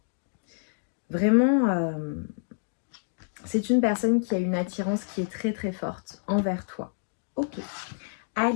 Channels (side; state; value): right; silent; digital silence